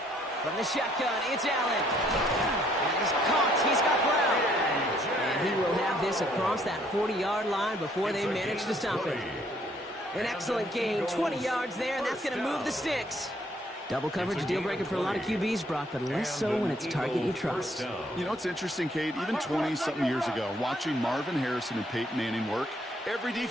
From the shotgun, it's Allen. And he's caught. He's got Brown. And he will have this across that 40-yard line before they manage to stop him. An excellent gain. 20 yards there, and that's going to move the sticks. Double coverage, deal breaker for a lot of QBs, Brock, but less so when it's target you trust. You know, it's interesting, Kate. Even 20-something years ago, watching Marvin Harrison and Peyton Manning work, every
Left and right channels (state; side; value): normal; both; correlation 0.66